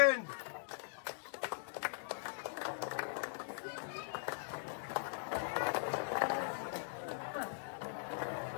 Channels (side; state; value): right; silent; digital silence